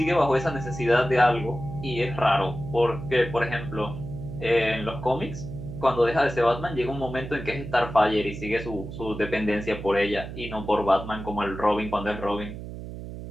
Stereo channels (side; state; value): right; noise; hum, 10 dB below the sound